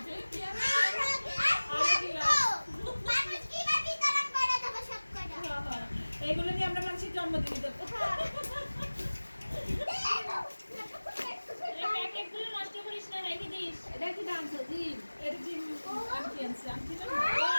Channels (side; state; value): both; inverted; correlation -1.00